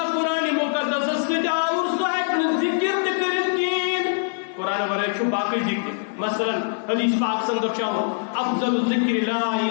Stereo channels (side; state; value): right; silent; digital silence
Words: قرآن مقدس سے اور صاحب ذکر کریں قرآن ورائے چھو باقی ذکر. مثلا حدیث پاک سندر چاہو افضل ذکر لا